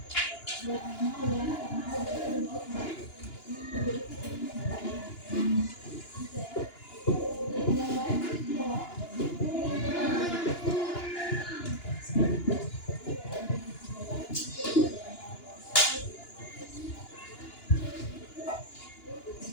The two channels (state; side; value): late; right; 2.9 ms